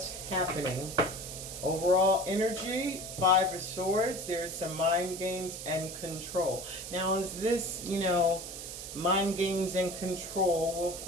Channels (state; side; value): noise; right; hiss, 9 dB below the sound